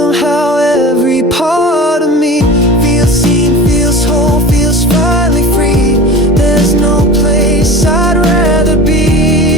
every part of me feels seen, feels whole, feels finally free. There's no place I'd rather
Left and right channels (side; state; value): both; normal; correlation 0.36